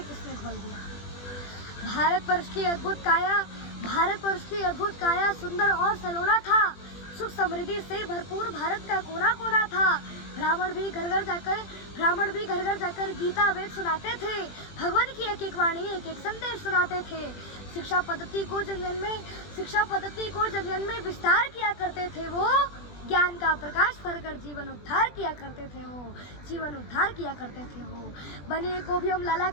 किसने घोल दिया। भारतवर्ष की अद्भुत काया सुंदर और सलोना था। सुख समृद्धि से भरपूर भारत का कोना कोना था। ब्राह्मण भी घर घर जाकर गीता वेद सुनाते थे। भगवान की एक एक वाणी एक एक संदेश सुनाते थे। शिक्षा पद्धति को जन में विस्तार किया करते थे। वो ज्ञान का प्रकाश भरकर जीवन उद्धार किया करते थे। वो बनिए को भी हम लाला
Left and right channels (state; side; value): late; right; 20 ms